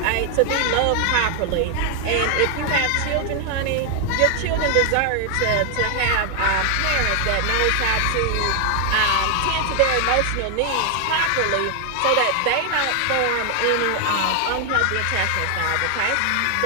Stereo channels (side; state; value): both; different; correlation 0.00